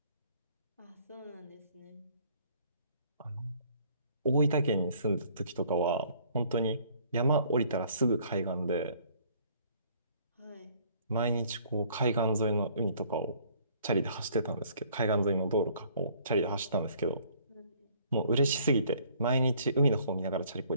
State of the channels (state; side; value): inverted; both; correlation -0.59